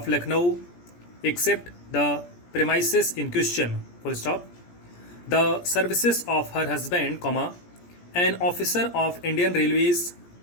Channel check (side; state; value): right; late; 17 ms